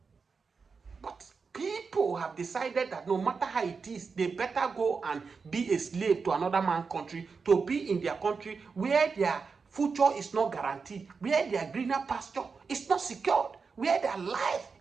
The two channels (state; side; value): quieter; left; 5.1 dB